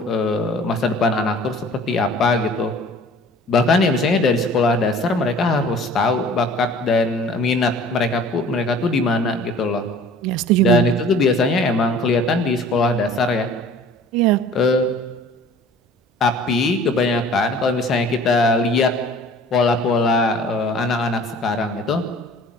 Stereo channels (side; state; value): both; normal; correlation 0.48